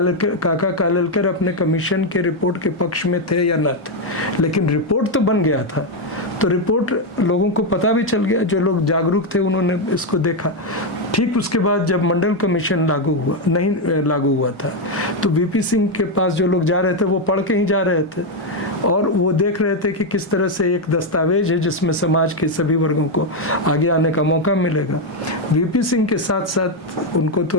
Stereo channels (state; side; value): normal; both; correlation 0.04